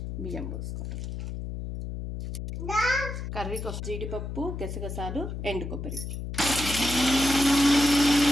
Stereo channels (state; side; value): noise; left; hum, 6 dB below the sound